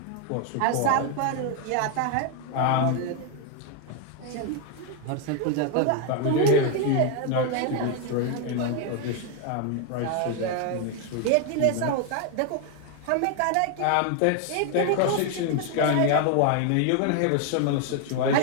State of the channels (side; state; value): both; different; correlation 0.01